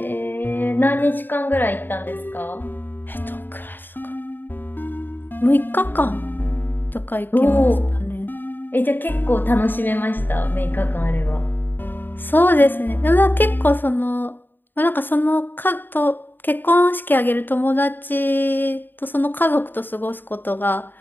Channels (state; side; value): late; right; 0.093 ms